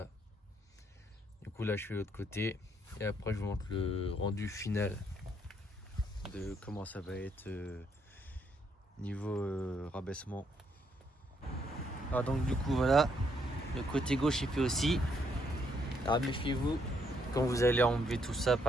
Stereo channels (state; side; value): normal; both; correlation 0.73